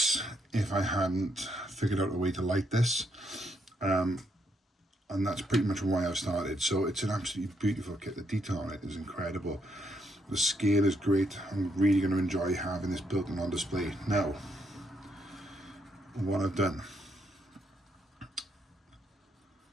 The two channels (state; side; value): normal; both; correlation 0.76